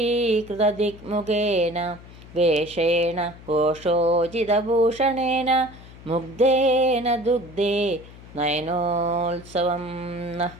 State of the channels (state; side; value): noise; left; hum, 19 dB below the sound